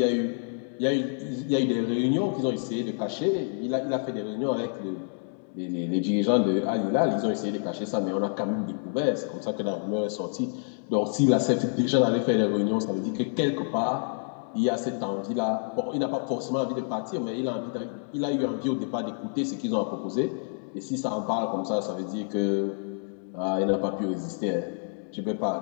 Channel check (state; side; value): silent; right; digital silence